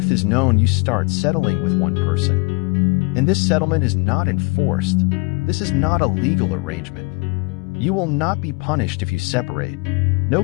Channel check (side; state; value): right; quieter; 27.9 dB